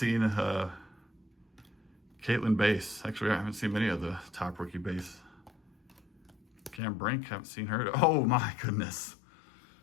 Caitlin Base. Actually, I haven't seen many of the top rookie base. Cam Brink, haven't seen her. Oh my goodness.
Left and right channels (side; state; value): right; drops out; at 6.8 s